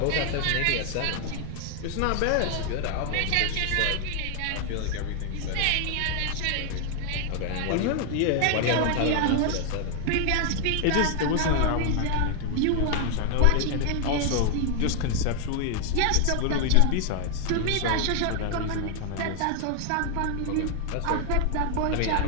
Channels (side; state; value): both; different; correlation 0.00